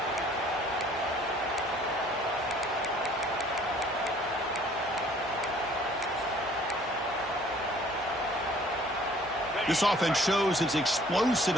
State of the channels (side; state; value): both; normal; correlation 0.56